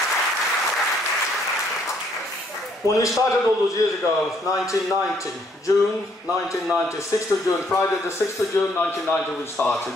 When we started all those years ago, 1990, June 1990, 6th of June, Friday the 6th of June 1990 we started.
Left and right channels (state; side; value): normal; both; correlation 0.67